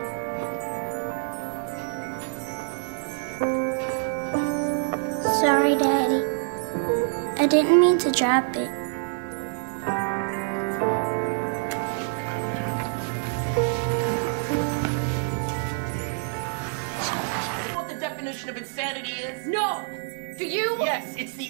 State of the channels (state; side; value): silent; left; 61 dB below the other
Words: Sorry, Daddy. I didn't mean to drop it. What the definition of insanity is? No! Do you? Yes, it's the